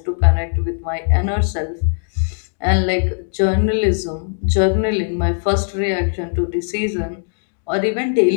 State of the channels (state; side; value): silent; right; digital silence